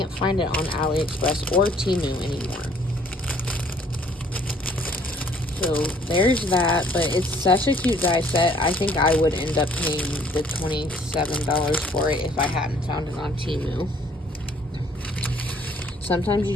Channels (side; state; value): both; normal; correlation 0.60